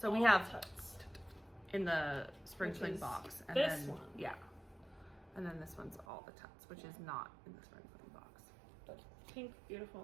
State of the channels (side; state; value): left; drops out; at 6.1 s